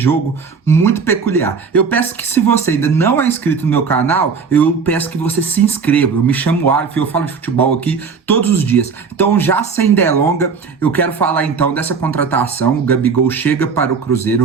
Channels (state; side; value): quieter; left; 5.4 dB